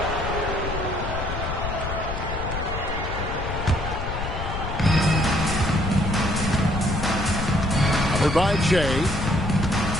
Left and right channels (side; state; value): left; noise; rumble, 5 dB below the sound